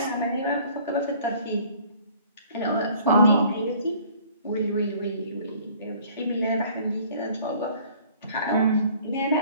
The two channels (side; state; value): both; inverted; correlation -0.54